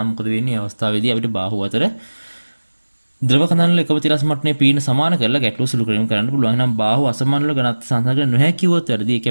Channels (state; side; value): inverted; both; correlation -1.00